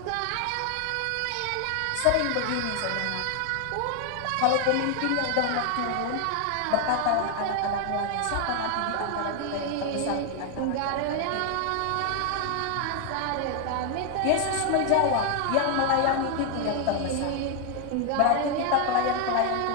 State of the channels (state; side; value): different; both; correlation 0.00